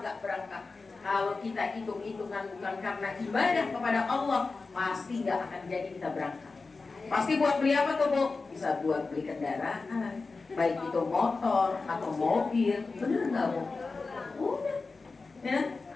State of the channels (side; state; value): right; quieter; 4.0 dB